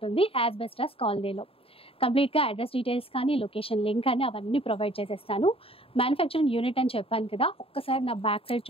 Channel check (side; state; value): right; late; 0.27 ms